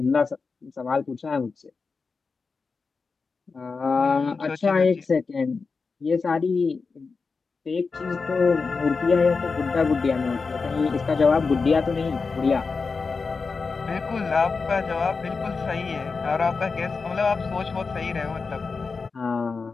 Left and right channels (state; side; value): quieter; right; 4.6 dB